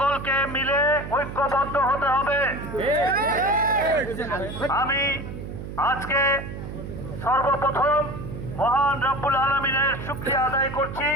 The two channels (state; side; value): noise; right; hum, 9 dB below the sound